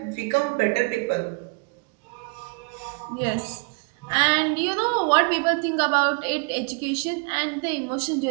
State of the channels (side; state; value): left; quieter; 30.7 dB